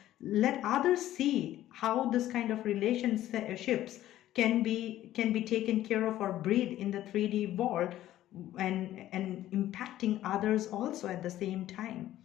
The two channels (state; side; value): quieter; right; 13.6 dB